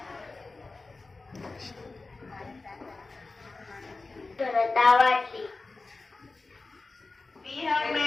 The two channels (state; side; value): quieter; right; 3.6 dB